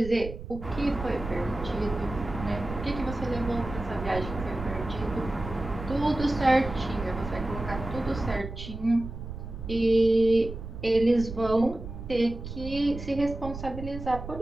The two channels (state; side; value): noise; right; rumble, 9 dB below the sound